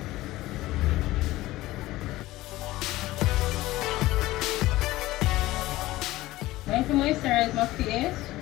I'm going to moisturize my face.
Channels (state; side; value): quieter; right; 17.4 dB